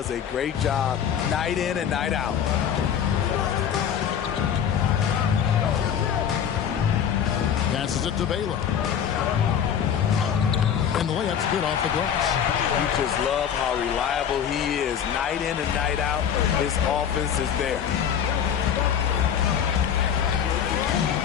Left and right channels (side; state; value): right; quieter; 8.5 dB